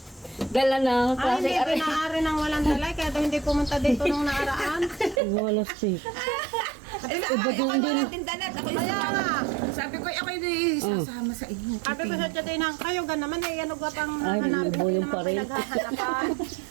Dala na Ay, hindi pinaari ng walang dala, kaya daw hindi pumunta dito nung nakaraan. Wala si. Ako natin dalat. Ako Kaya nga. Sabi ko, ako hindi sasama sa inyo. Sabi ko sa Titinang, kayo ga naman eh, ano ga pang Ay, hanapin bubo yung naman pa rin. pinaghahanapan.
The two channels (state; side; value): drops out; left; at 5.2 s